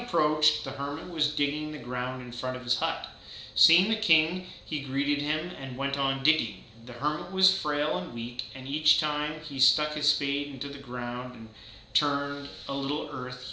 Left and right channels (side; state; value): both; identical; correlation 1.00